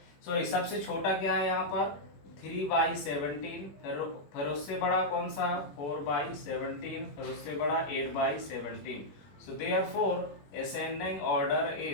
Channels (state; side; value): late; right; 21 ms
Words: सॉरी सबसे छोटा क्या है यहाँ पर 3/17, फिर उससे बड़ा कौन सा 4/17, फिर उससे बड़ा 8/17। So therefore ascending order